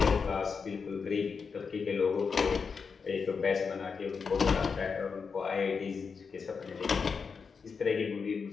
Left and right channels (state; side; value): quieter; right; 5.5 dB